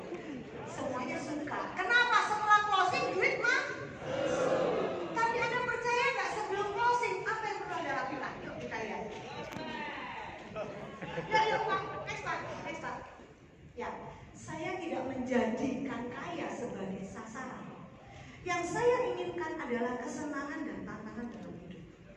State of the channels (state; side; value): identical; both; correlation 1.00